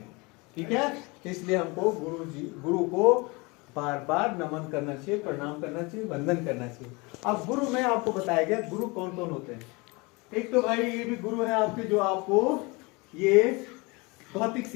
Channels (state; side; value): quieter; right; 26.5 dB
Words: ठीक है. इसलिए हमको गुरु को बार बार नमन करना चाहिए, प्रणाम करना चाहिए, वंदन करना चाहिए. अब गुरु में आपको बताया गया गुरु कौन कौन होते हैं. एक तो भाई ये भी गुरु है आपके, जो आपको ये भौतिक